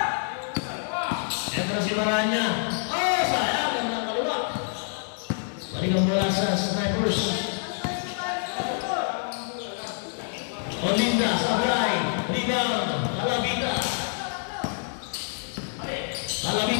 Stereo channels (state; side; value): silent; right; 60 dB below the other